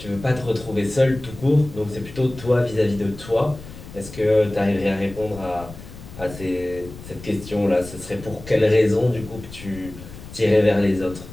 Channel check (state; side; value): noise; left; rumble, 15 dB below the sound